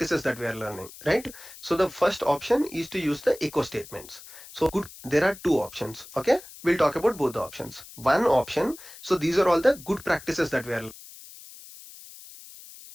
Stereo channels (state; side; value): noise; left; hiss, 17 dB below the sound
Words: that we are learning, right? So the first option is to use the echo statements. So there are two options. Okay, we'll talk about both the options. One option, so these are all the good practices that we are